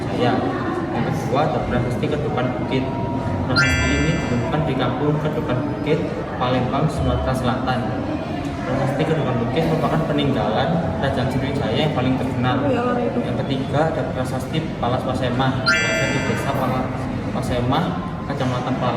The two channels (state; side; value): identical; both; correlation 1.00